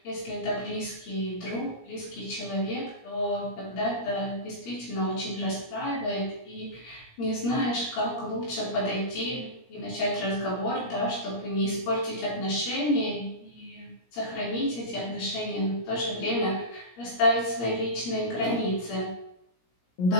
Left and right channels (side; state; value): right; late; 17 ms